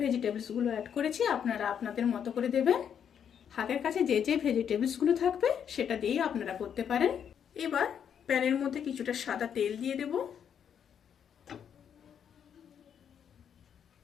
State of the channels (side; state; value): right; quieter; 8.3 dB